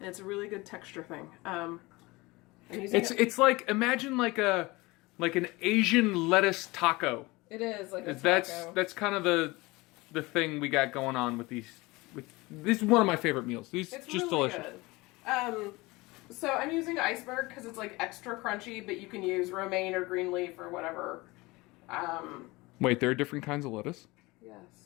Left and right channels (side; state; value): right; quieter; 22.5 dB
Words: it's a really good texture thing. It's like, imagine like an Asian lettuce taco. It is like a taco. That's kind of the thing we got going on with these. This is one of my favorite meals. It's just really delicious. Good. So I'm using iceberg because it's like extra crunchy, but you can use romaine or green leaf or whatever. Wait, there are different kinds of lettuce?